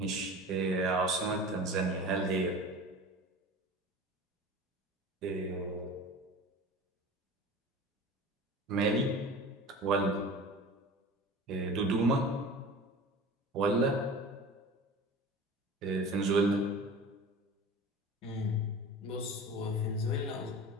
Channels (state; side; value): normal; both; correlation 0.37